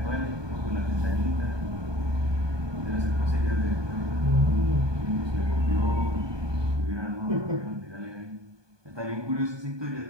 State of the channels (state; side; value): late; left; 1.2 ms